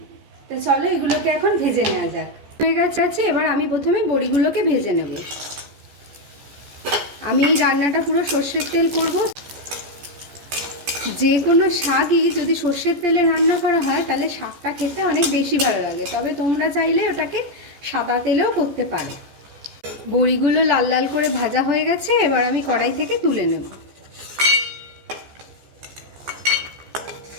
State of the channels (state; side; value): late; left; 14 ms